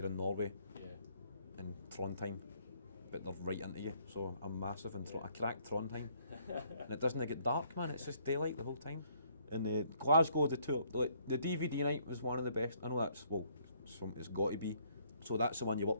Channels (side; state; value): both; inverted; correlation -0.66